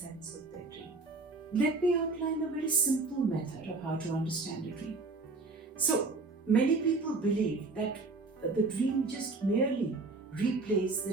of their dream? Let me outline a very simple method of how to understand a dream. So, many people believe that the dream just merely replays the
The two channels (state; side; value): quieter; left; 3.7 dB